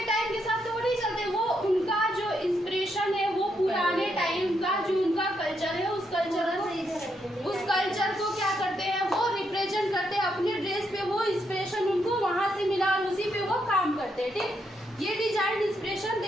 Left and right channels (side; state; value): both; normal; correlation 0.78